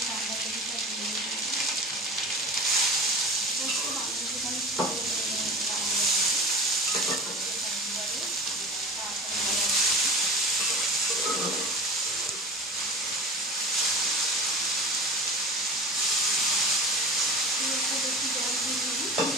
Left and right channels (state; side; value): normal; both; correlation 0.35